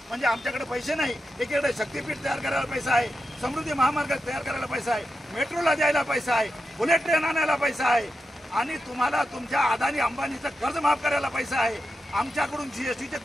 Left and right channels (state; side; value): normal; both; correlation 0.89